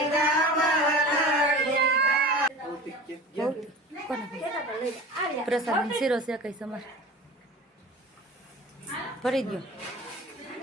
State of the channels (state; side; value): normal; both; correlation 0.36